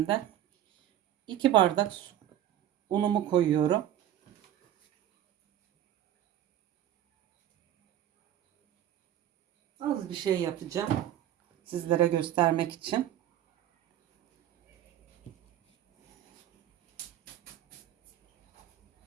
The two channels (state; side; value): quieter; left; 11.8 dB